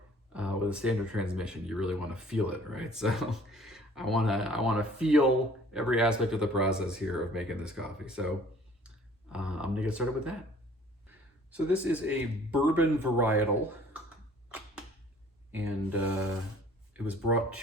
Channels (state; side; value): normal; both; correlation 0.54